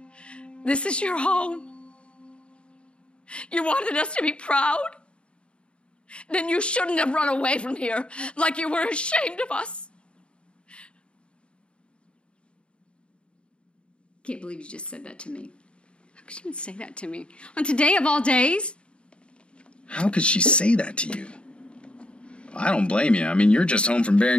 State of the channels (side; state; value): right; late; 0.056 ms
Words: This is your home. You wanted us to be proud? Then you shouldn't have run away from here like you were ashamed of us. Can't believe you just said that to me. How could you even say that to me? On today of all days? How could she say that to you? I don't blame you. I mean, you're just home from